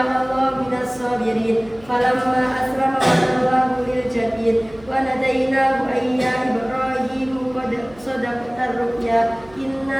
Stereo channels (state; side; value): noise; right; hum, 24 dB below the sound